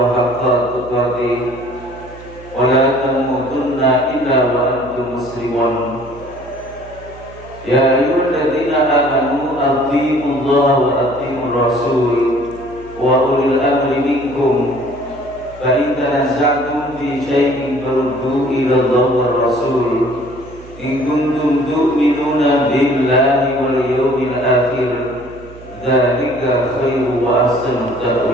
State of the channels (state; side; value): noise; right; hum, 19 dB below the sound